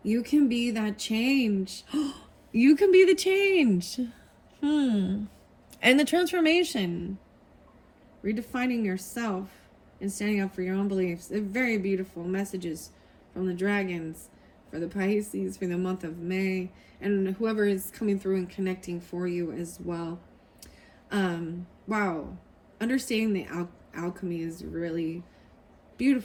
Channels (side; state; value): both; identical; correlation 1.00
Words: You can be that change. You can be the change. And the transformation. Redefining yourself and standing up for your own beliefs. They're very beautiful messages from the dragons for the Pisces for the month of May, and whoever is coming through and connecting for you as well. Wow. Understanding the alchemy is really